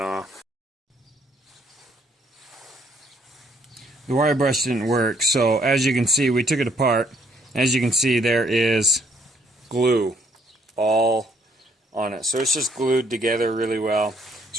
The wire brush didn't work, so as you can see, we took it apart. As you can see, there is glue all on it. So it's just glued together really well.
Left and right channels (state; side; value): normal; both; correlation 0.68